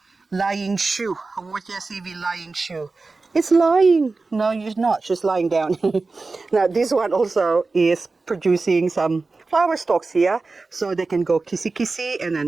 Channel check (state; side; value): quieter; left; 3.8 dB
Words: lying shoe. Haworthia CV lying shoe. It's lying. No, you're not. She's lying down. Now, this one also is producing some flower stalks here, so they can go kissy, and